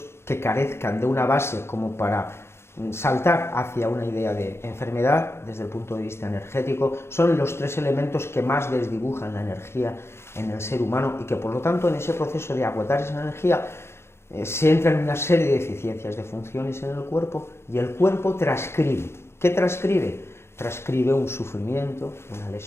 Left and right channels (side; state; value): right; late; 0.12 ms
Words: que carezcan de una base como para saltar hacia una idea de enfermedad desde el punto de vista energético, son los tres elementos que más desdibujan la energía en el ser humano y que por lo tanto en ese proceso de agotar esa energía se entra en una serie de deficiencias de funciones en el cuerpo y el cuerpo transcribe. ¿Qué transcribe? Transcribe un sufrimiento, una